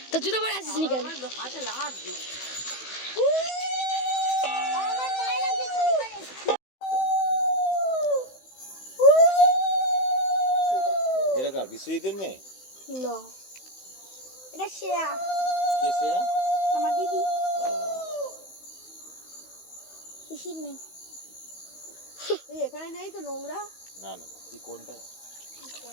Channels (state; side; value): late; right; 16 ms